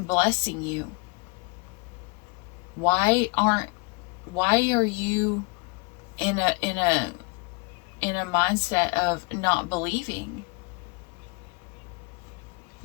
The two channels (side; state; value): right; quieter; 31.2 dB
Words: blessing you. Why are you in a mindset of not believing?